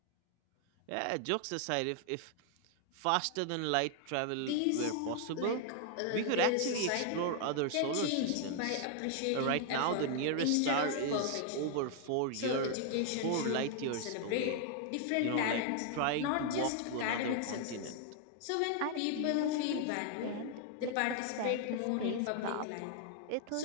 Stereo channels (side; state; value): both; different; correlation 0.00